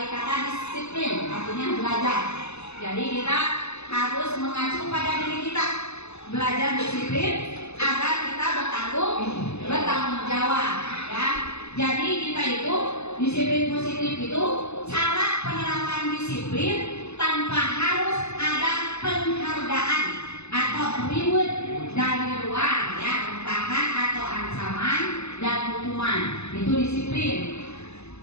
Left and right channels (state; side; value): late; right; 0.80 ms